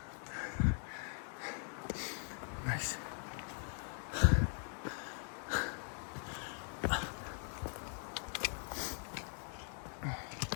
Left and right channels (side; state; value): right; silent; 50 dB below the other